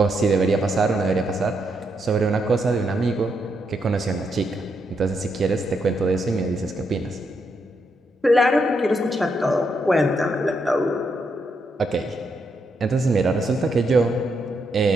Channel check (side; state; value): both; normal; correlation 0.79